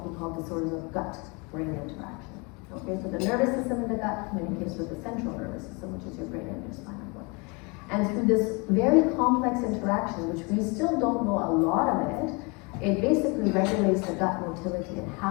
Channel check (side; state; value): right; quieter; 30.1 dB